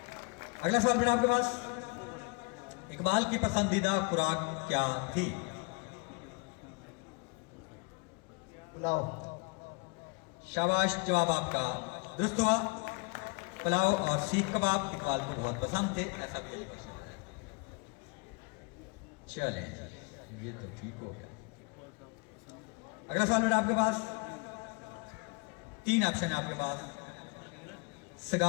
अगला सवाल बेटा आपके पास, इकबाल की पसंदीदा खुराक क्या थी? पुलाव। शाबाश, जवाब आपका दुरुस्त हुआ। पुलाव और सीख कबाब इकबाल को बहुत पसंद थे, ऐसा भी एलिगेशन है। चलें, ये तो ठीक हो गया। अगला सवाल बेटा आपके पास, 3 ऑप्शन है आपके पास,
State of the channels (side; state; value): right; quieter; 30.6 dB